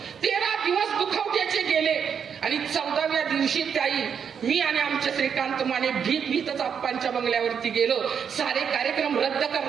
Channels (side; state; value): left; quieter; 7.3 dB